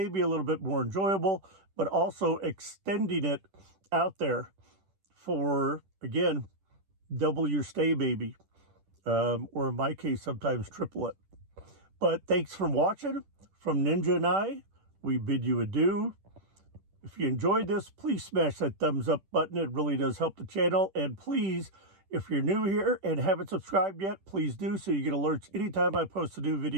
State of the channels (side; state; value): left; late; 10 ms